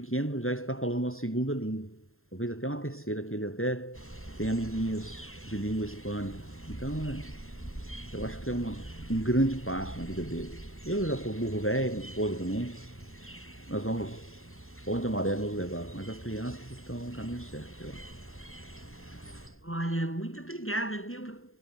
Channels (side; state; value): right; late; 0.61 ms